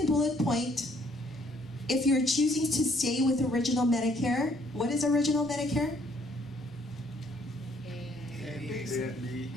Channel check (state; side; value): normal; both; correlation 0.65